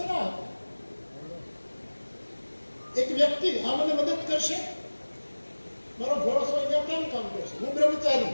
એક વ્યક્તિ આ મને મદદ કરશે, મારો ભરોસો અહીંયા કેમ કામ કરશે? હું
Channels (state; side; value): inverted; both; correlation -1.00